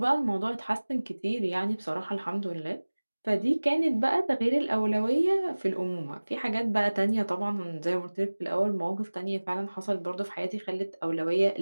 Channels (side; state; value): both; inverted; correlation -1.00